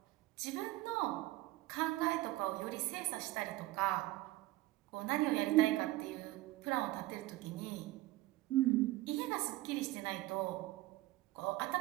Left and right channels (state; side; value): quieter; left; 18.3 dB